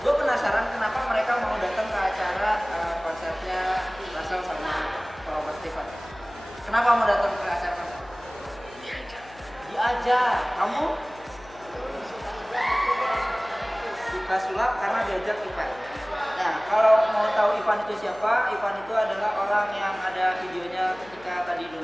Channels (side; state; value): left; noise; hum, 22 dB below the sound